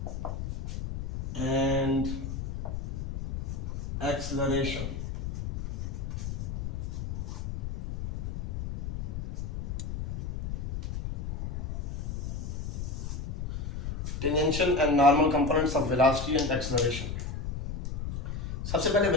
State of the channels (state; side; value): noise; left; rumble, 5 dB below the sound